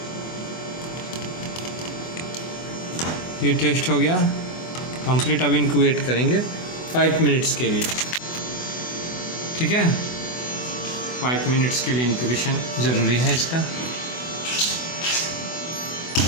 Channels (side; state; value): right; late; 24 ms